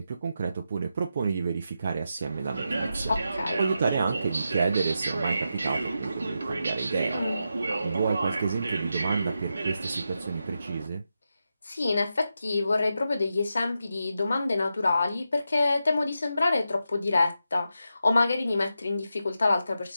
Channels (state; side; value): inverted; both; correlation -0.87